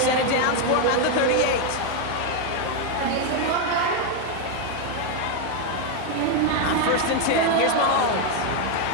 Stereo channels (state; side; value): different; both; correlation 0.01